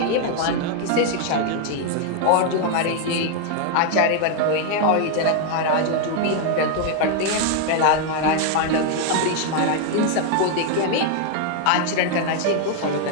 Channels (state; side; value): different; both; correlation 0.00